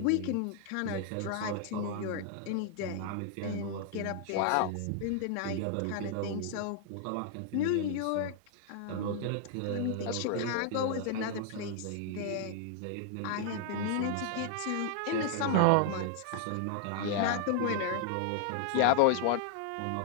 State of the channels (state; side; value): different; both; correlation 0.00